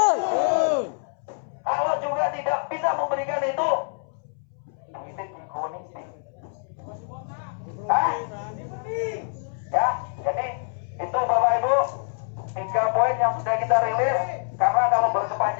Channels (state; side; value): silent; right; 61 dB below the other